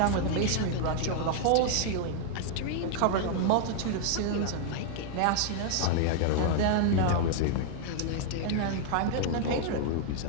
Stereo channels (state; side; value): different; both; correlation 0.00